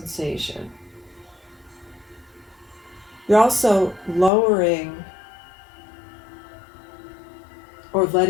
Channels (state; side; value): drops out; right; at 4.3 s